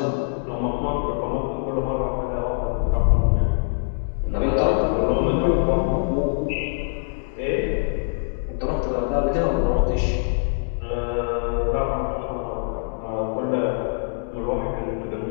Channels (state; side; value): silent; right; digital silence